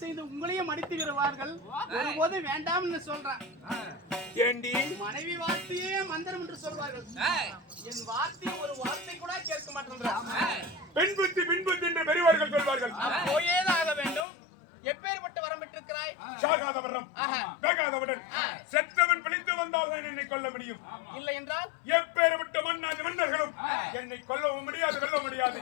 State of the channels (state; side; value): drops out; right; at 14.2 s